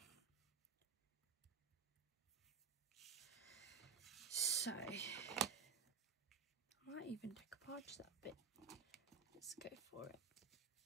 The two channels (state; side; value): quieter; left; 5.9 dB